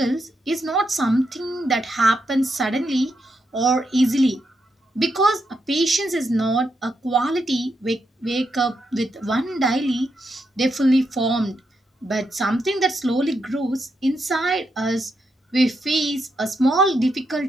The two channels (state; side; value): normal; both; correlation 0.82